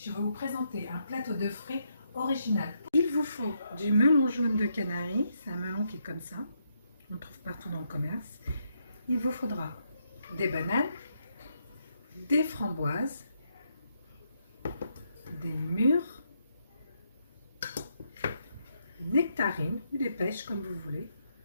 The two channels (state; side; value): inverted; both; correlation -0.78